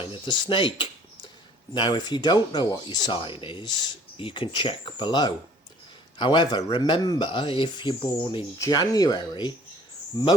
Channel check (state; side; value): normal; both; correlation 0.54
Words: of the snake. Now, if you don't know what your sign is, you can check below. However, remember, if you're born in January,